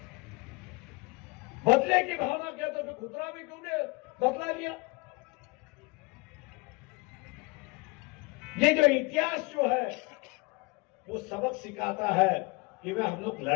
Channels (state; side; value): quieter; right; 26.3 dB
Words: बदले की भावना कहते फिर गोधरा में क्यों नहीं बदला लिया? ये जो इतिहास जो है वो सबक सिखाता है कि वे हम लोग